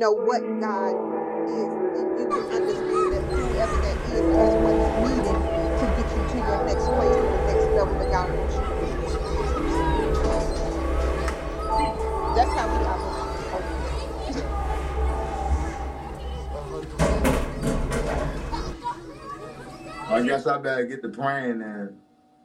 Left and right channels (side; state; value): both; identical; correlation 1.00